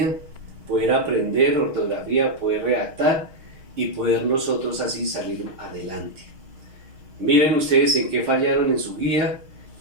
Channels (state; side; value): late; left; 6.3 ms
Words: poder aprender ortografía, poder redactar y poder nosotros así salir adelante. Miren ustedes en qué fallaron en su guía,